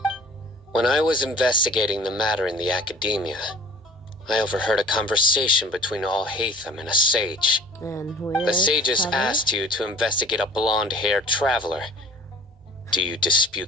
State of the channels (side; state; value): both; normal; correlation 0.46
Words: When I was investigating the matter in the academia, I overheard a conversation between Alhaitham and a sage. And who The is sages Tyler? asked you to investigate a blonde-haired traveler. Do you